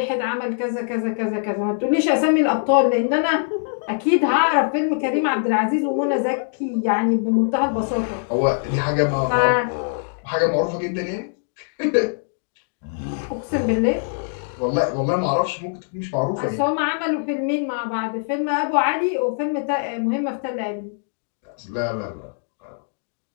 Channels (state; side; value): silent; right; digital silence